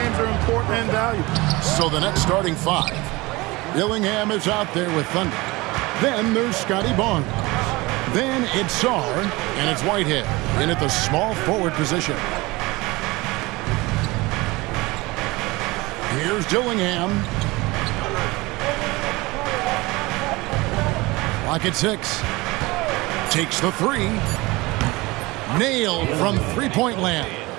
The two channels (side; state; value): left; quieter; 22.2 dB